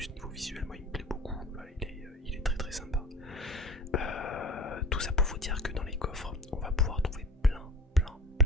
niveau visuel moi il me plaît beaucoup. Il est très très sympa. Tout ça pour vous dire que dans les coffres on va pouvoir trouver plein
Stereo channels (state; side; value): normal; both; correlation 0.40